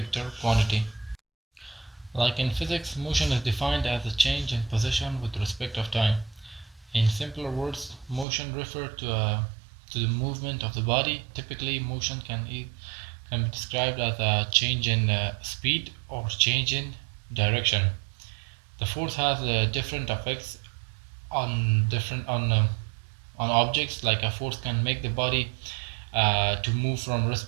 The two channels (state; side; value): drops out; left; at 8.2 s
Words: quantity. Like in physics, motion is defined as a change in position with respect of time. In simpler words, motion refers to the movement of the body. Typically, motion can be described as a change in speed or change in direction. The force has different effects on objects. Like a force can make the body to move from